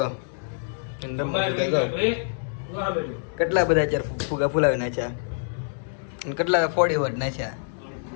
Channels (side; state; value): right; silent; digital silence